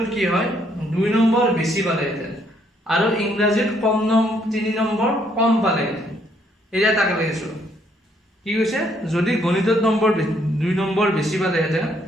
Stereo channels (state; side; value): normal; both; correlation 0.69